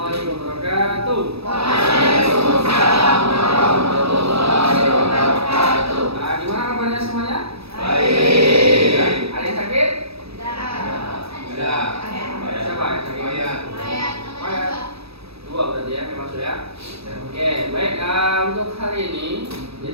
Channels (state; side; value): late; left; 0.78 ms